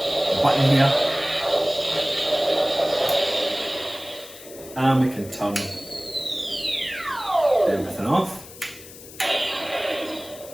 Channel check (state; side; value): noise; left; hiss, 17 dB below the sound